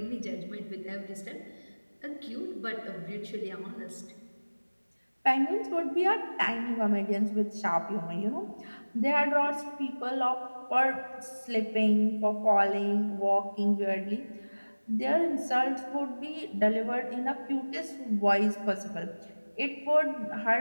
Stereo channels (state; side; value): inverted; both; correlation -1.00